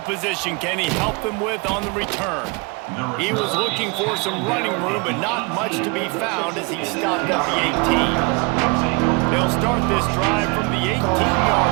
position can he help them with on the return? He was looking for some running room, but not much to be found as he stopped at the 18. They'll start this drive from the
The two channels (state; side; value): quieter; left; 29.5 dB